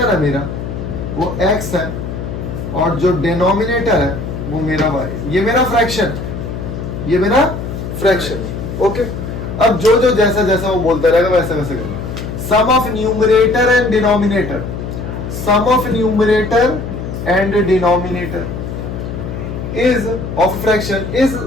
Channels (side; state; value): left; noise; hum, 6 dB below the sound